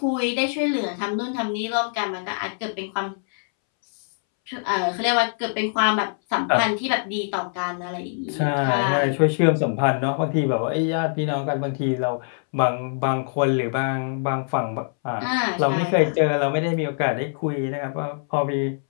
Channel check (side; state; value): right; silent; 63 dB below the other